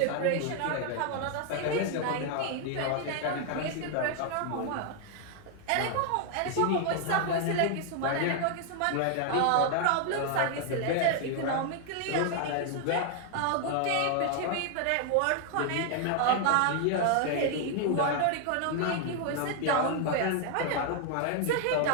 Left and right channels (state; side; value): different; both; correlation 0.00